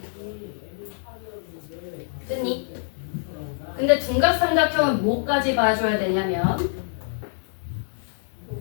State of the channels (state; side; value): silent; right; digital silence